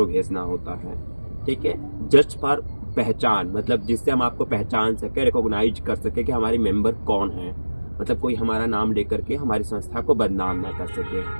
भेजना होता है। ठीक है, जस्ट फॉर पहचान, मतलब जिससे हम आपको पहचान सके, रिकॉग्नाइज कर सके कि हमारे मेंबर कौन है, मतलब कोई हमारा नाम लेकर के हमारी संस्था को बदनाम ना कर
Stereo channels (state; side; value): inverted; both; correlation -1.00